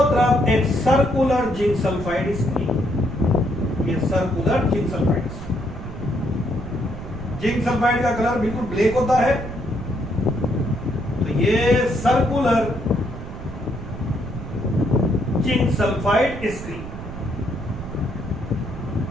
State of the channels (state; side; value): noise; right; rumble, 10 dB below the sound